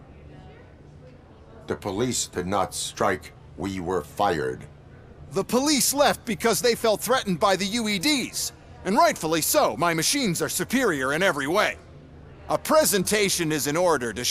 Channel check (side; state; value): both; identical; correlation 1.00